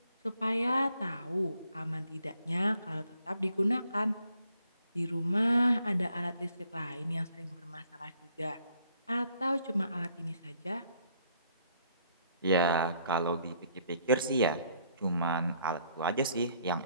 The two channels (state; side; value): inverted; both; correlation -0.66